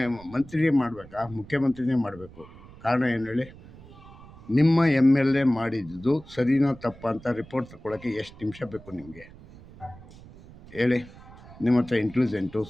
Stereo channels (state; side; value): noise; right; rumble, 20 dB below the sound